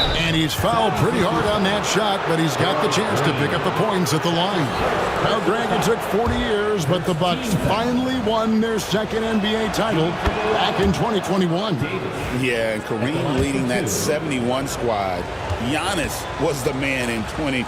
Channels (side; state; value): both; identical; correlation 1.00